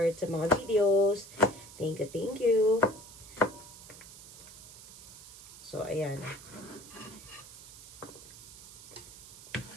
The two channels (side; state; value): right; noise; hiss, 17 dB below the sound